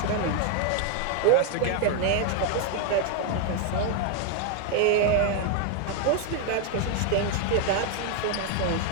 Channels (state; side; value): different; both; correlation 0.01